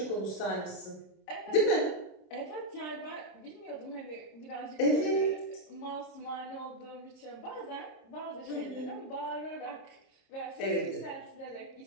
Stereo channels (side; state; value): right; late; 27 ms